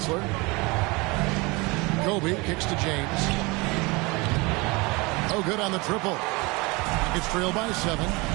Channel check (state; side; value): quieter; left; 25.5 dB